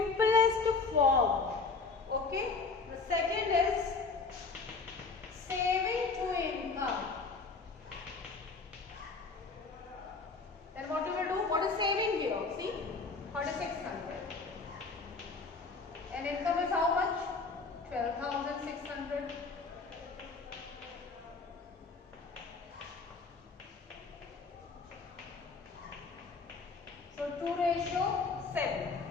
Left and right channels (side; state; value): right; quieter; 4.3 dB